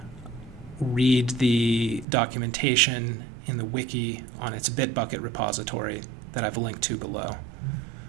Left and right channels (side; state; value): left; drops out; at 2.1 s